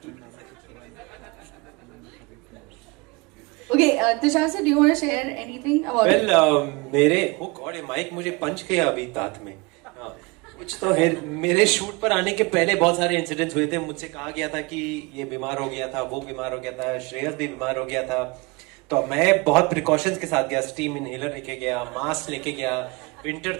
Okay, Tushar sir, do you want to share anything about it? Well, मेरे oh God, ये mic मुझे पंच किया अभी दांत में. हाँ, कुछ तो है. मेरे शूट पर आने के पहले बहुत सारे इंसिडेंट्स हुए थे. मुझसे कहा गया था कि ये बीमार हो गया था, वो बीमार हो गया था, श्रेयस भी बीमार हो गया था. तो मैं बहुत प्रिकॉशंस के साथ गया. स्टीम इनहेलर लेके गया, मास्क लेके गया, विंटर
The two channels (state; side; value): quieter; left; 26.3 dB